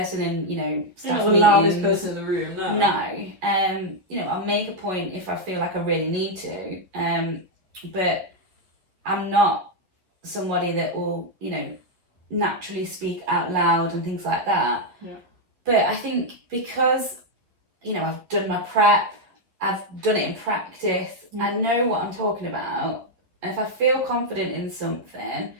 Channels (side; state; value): left; late; 11 ms